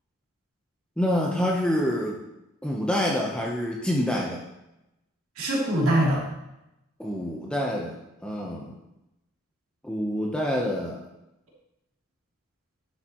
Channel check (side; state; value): both; normal; correlation 0.72